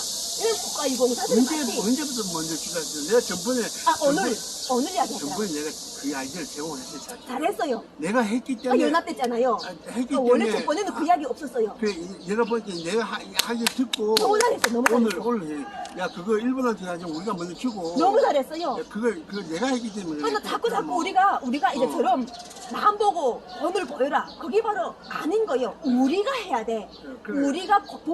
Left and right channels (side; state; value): both; identical; correlation 1.00